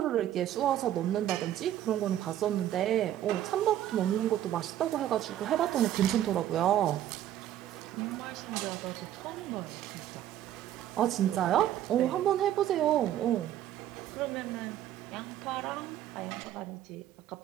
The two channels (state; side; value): quieter; left; 12.1 dB